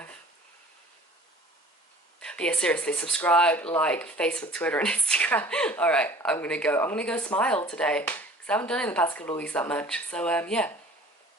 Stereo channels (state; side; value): normal; both; correlation 0.47